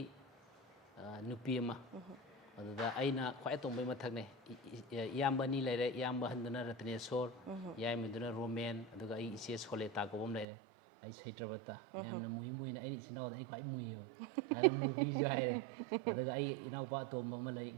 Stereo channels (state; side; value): drops out; left; at 10.5 s